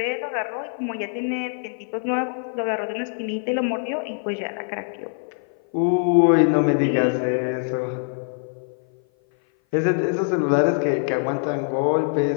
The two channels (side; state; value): right; silent; 56 dB below the other